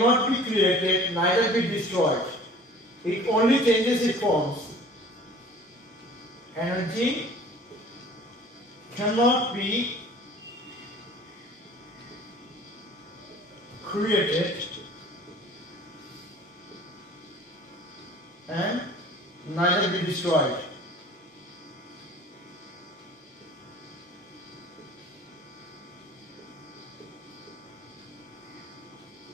be created, neither be destroyed. It only changes its forms. Energy cannot be created and neither be destroyed.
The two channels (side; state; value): both; normal; correlation 0.47